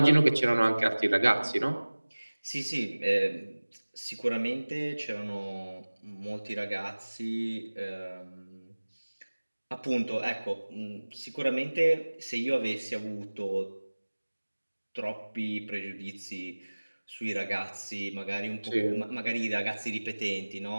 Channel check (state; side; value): inverted; both; correlation -1.00